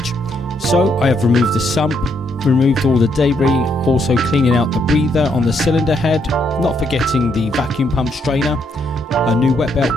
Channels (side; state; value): both; normal; correlation 0.74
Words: So I have removed the sump, removed all the debris, also cleaning out the breather on the cylinder head, not forgetting the vacuum pump strainer. A new wet